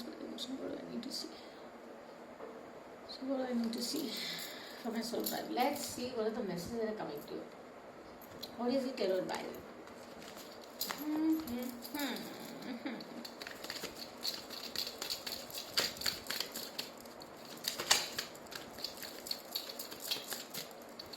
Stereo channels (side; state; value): both; identical; correlation 1.00